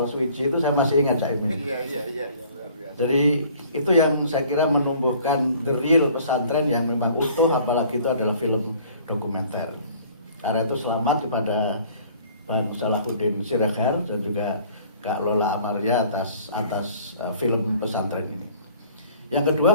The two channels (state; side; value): inverted; both; correlation -0.53